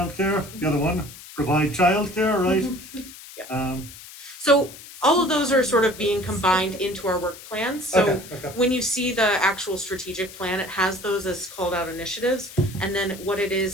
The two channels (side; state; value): left; noise; hiss, 16 dB below the sound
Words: the other one, provide childcare, right? Yeah. So all of those are sort of being combined into our work plans. So Okay. when you see the actual strategic plan, it has those as called out initiatives. And then what it